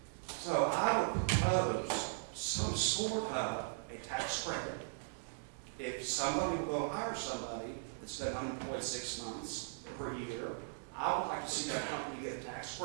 So I would propose some sort of a tax credit. If somebody will go hire somebody that's been unemployed 6 months or a year, I would like to see that company get a tax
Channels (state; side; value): silent; left; digital silence